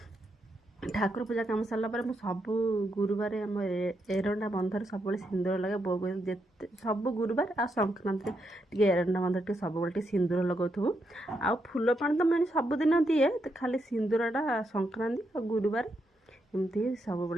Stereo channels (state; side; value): normal; both; correlation 0.81